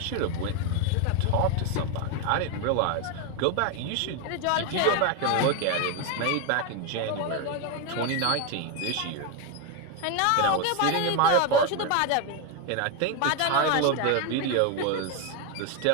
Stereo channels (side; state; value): both; different; correlation 0.02